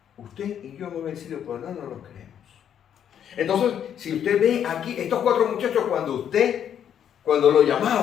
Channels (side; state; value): right; quieter; 9.2 dB